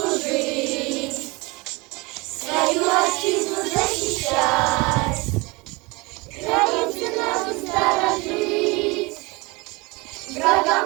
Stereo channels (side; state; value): left; quieter; 25.4 dB